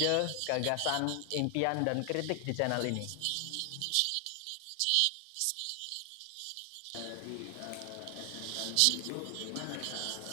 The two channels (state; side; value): different; both; correlation 0.00